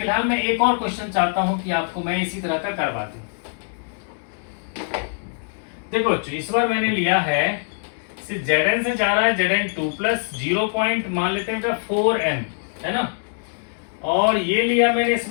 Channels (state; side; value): silent; right; digital silence